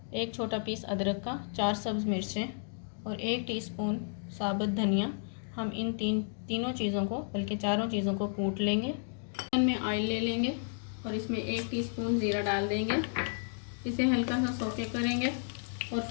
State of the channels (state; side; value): silent; right; digital silence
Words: एक छोटा पीस अदरक का, 4 सब्ज़ मिर्चें और 1 टीस्पून साबुत धनिया। हम इन तीनों चीज़ों को, बल्कि चारों चीज़ों को कूट लेंगे। पैन में ऑयल ले लेंगे और इसमें 1 टीस्पून ज़ीरा डाल देंगे। इसे हल्का सा सौते करेंगे और